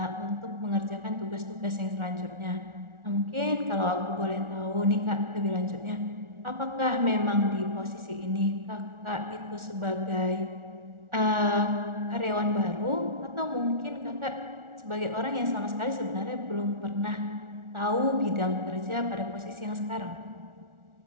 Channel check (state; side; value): late; left; 1.4 ms